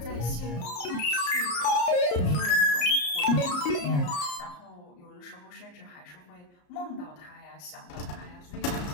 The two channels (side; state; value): right; late; 34 ms